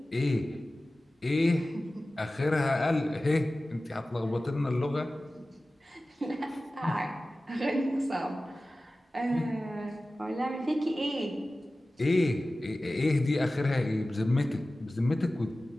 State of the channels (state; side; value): normal; both; correlation 0.96